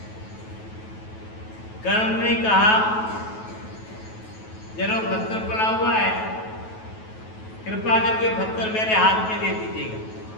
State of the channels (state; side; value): late; right; 9.3 ms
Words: कर्ण ने कहा, जरा पत्थर पड़ा हुआ है, कृपा करके पत्थर मेरे हाथ में दे दीजिएगा।